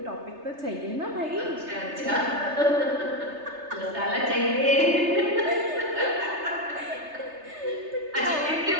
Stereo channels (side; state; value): left; late; 3.3 ms